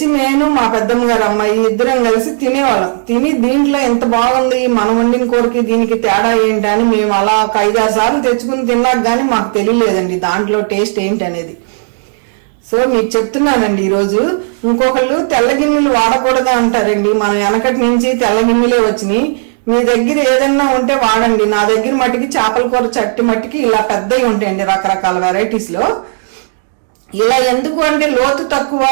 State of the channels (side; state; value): left; silent; digital silence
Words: నేను మా పెద్దమ్మ గారు అమ్మాయి ఇద్దరం కలిసి తినేవాళ్ళం. తిని దీంట్లో ఎంత బాగుంది, మనం వండిన కూరకి దీనికి తేడా ఏంటి అని మేము అలా ఒక 5-6 సార్లు తెచ్చుకుని తిన్నాక గానీ మాకు తెలియలేదండి దాంట్లో టేస్ట్ ఏంటి అనేది. సో మీకు చెప్తున్నానండి ఈరోజు. ఇంకొకళ్ళు తెల్ల గిన్నెలు వాడకూడదా అంటారండి. మన వెనకటి నుంచి తెల్ల గిన్నెలే వచ్చినాయి. మీ దగ్గర ఏదన్నా ఉంటే వాడండి. నా దగ్గర మట్టికి చేపల కూర చట్టి మట్టికి ఇలా పెద్దవి ఉంటాయండి రకరకాల వెరైటీస్ లో. ఇలా ఎందుకు అంటే లోతు తక్కువ,